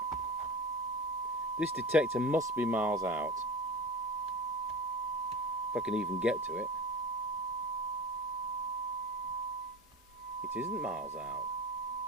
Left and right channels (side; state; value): both; normal; correlation 0.31